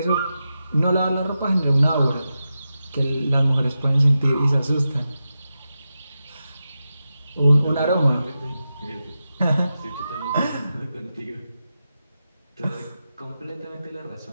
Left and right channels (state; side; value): inverted; both; correlation -0.90